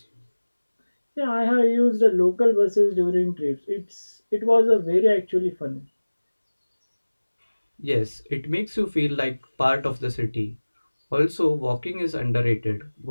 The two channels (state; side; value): inverted; both; correlation -1.00